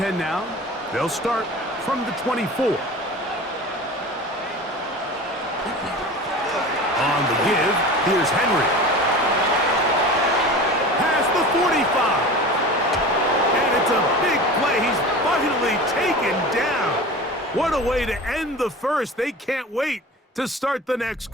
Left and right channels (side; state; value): both; normal; correlation 0.35